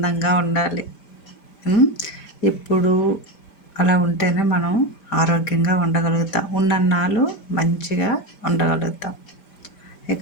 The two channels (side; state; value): right; late; 5.0 ms